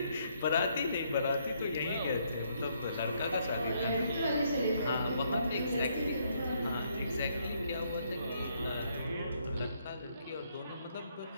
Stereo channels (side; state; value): both; inverted; correlation -0.72